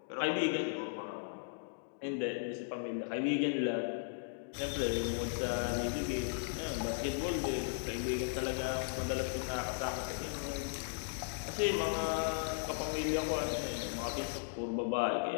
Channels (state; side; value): silent; right; digital silence